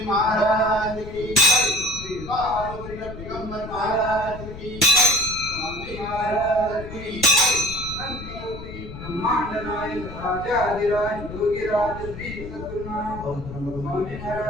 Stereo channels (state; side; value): noise; left; rumble, 11 dB below the sound